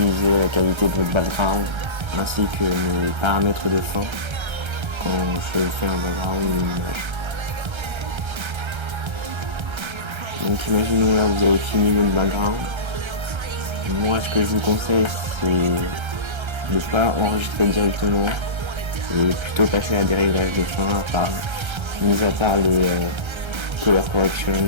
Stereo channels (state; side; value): late; left; 1.3 ms